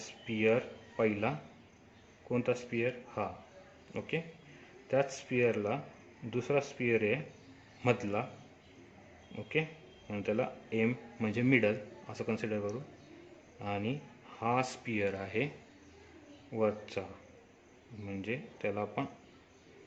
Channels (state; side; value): identical; both; correlation 1.00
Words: पहिला, कोणता स्पिअर, हा. ओके, त्याच स्पिअरला दुसरा स्पिअर आहे मधला. ओके, म्हणून त्याला एम म्हणजे मिडल असं कन्सिडर करू. आणि हा स्पिअर आहे वरचा, म्हणजे त्याला आपण